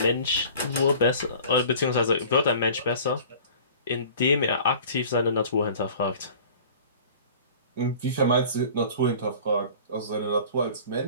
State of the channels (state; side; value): inverted; both; correlation -0.45